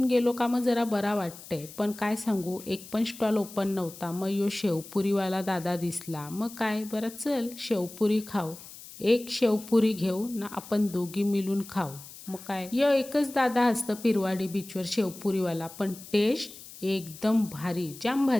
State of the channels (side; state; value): left; noise; hiss, 16 dB below the sound